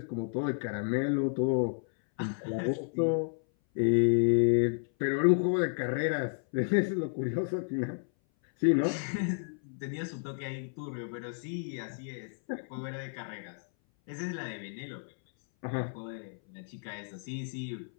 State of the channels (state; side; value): silent; right; 57 dB below the other